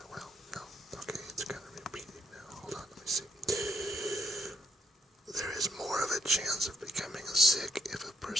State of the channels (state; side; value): normal; both; correlation 0.74